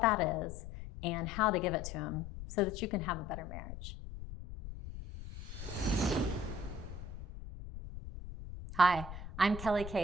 that is and how to give it to him so that you can have a better marriage. Hi, I'm Kelly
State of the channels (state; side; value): noise; left; rumble, 10 dB below the sound